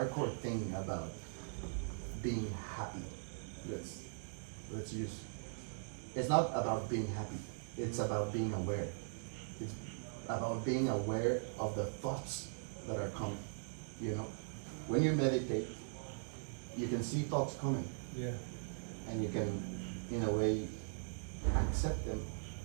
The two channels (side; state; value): left; silent; digital silence